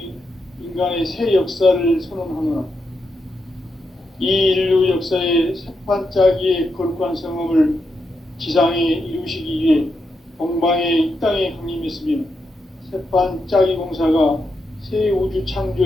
인간의 새 역사를 선언하노라. 이 인류 역사의 새판짜기의 거룩한 성험을 지상에 이루시기 위해 동방의 이 땅에 강림했으며 새판짜기 공사가 새 우주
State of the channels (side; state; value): both; normal; correlation 0.84